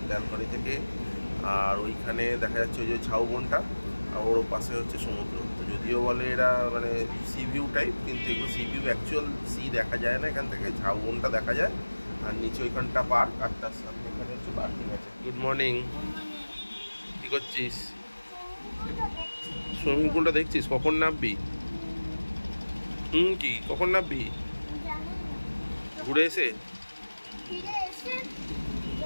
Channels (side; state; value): both; inverted; correlation -1.00